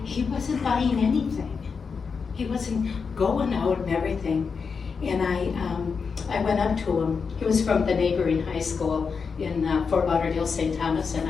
he wasn't buying anything. He wasn't going out and everything. And I went up to him. He was from the neighboring high school in Fort Lauderdale, St. Thomas, and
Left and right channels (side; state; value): right; quieter; 5.5 dB